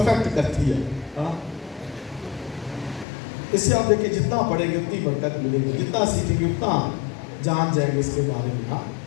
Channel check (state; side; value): drops out; right; at 3.1 s